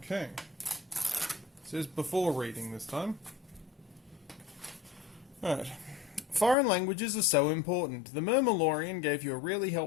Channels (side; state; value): right; drops out; at 6.6 s